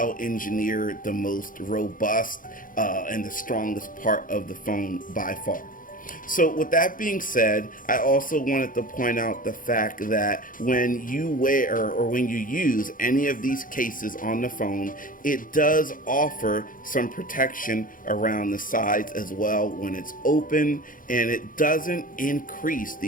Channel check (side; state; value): right; late; 0.40 ms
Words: engineered, the most robust, and the strongest part of the phone by far. So with that being said, I also wanted to point out the fact that when you wear or when you use any of these cases on the phone, it does offer some protection around the sides as well when it's open, and it doesn't increase